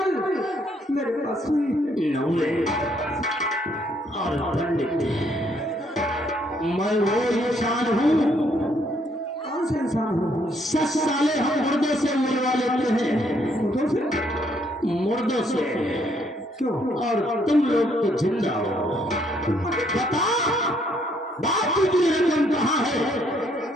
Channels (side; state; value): both; normal; correlation 0.69